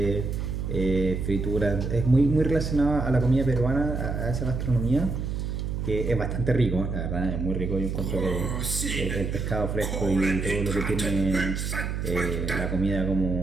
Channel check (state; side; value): noise; right; hum, 3 dB below the sound